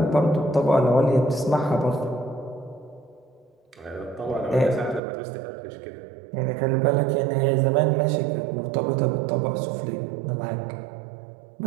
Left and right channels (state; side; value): drops out; left; at 5.0 s